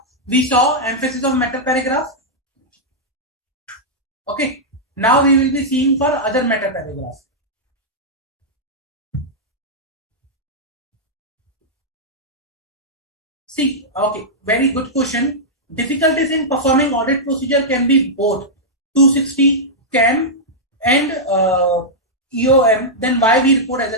we saw emphasis of matter paragraph. Okay. Now we will be seeing for other matter paragraph. See, okay, very good question. Difficulties in performing audit procedure can be both 260 CAM and EOM. Then why we report as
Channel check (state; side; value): normal; both; correlation -0.09